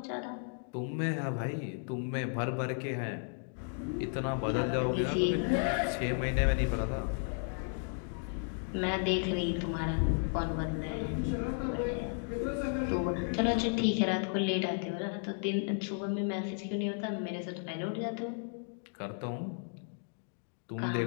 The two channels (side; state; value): right; silent; 55 dB below the other